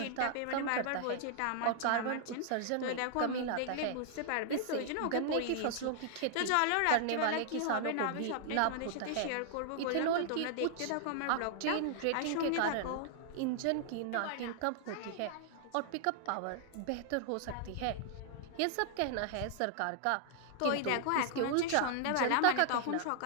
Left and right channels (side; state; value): both; different; correlation -0.01